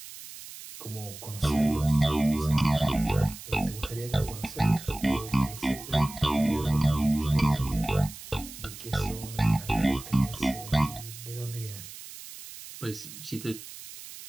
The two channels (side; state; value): right; noise; hiss, 14 dB below the sound